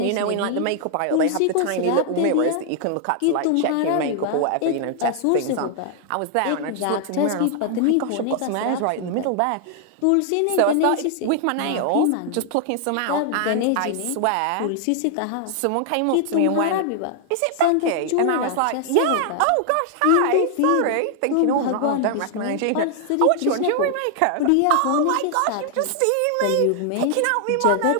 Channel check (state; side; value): different; both; correlation 0.00